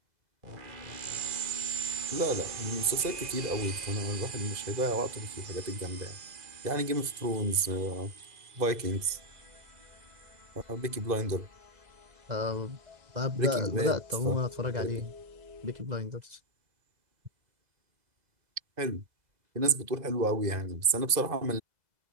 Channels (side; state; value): left; late; 2.0 ms